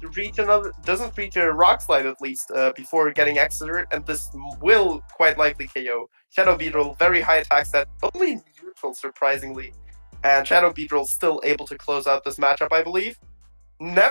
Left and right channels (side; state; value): both; inverted; correlation -1.00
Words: reach a Rock Slide at least before getting Exeter, and this will quite likely KO. Shadow Beetle, very high attack set, only neutral surprisingly. And Shadow Beetle still able to close out this matchup, I believe.